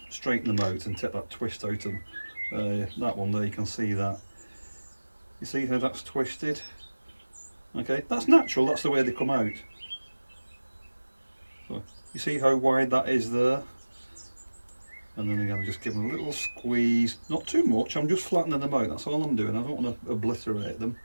straighten them out and take that twist out of them. That one there, you can see that. You see how that's twisted? Okay, that's natural, that's the way they come out. So, you see how wide that is there? And then again, just give them a little squeeze, not too much, I'm just flattening them out, that's all I'm doing, I don't want to obliterate them.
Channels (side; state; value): both; inverted; correlation -1.00